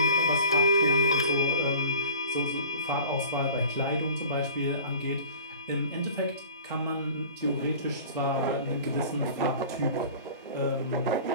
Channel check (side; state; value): both; inverted; correlation -0.42